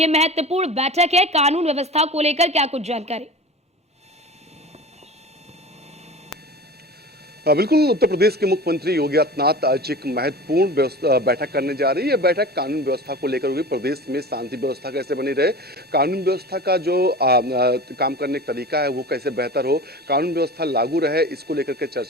महत्वपूर्ण बैठक है, कानून व्यवस्था को लेकर क्या कुछ जानकारी? बिल्कुल, उत्तर प्रदेश के मुख्यमंत्री योगी आदित्यनाथ आज एक महत्वपूर्ण बैठक करने जा रही है। बैठक कानून व्यवस्था को लेकर होगी। प्रदेश में शांति व्यवस्था कैसे बनी रहे, कानून व्यवस्था का जो काम करने का तरीका है वो कैसे बेहतर हो, कानून व्यवस्था लागू रहे, इसको लेकर के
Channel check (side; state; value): both; normal; correlation 0.35